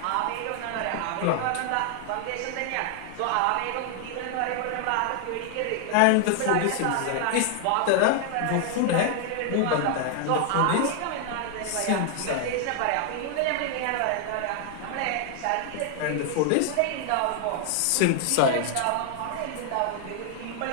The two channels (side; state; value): both; different; correlation 0.00